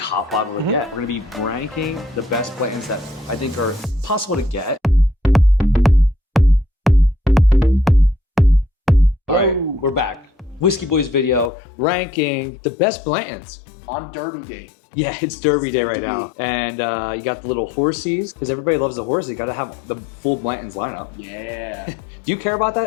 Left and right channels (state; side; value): drops out; right; at 11.5 s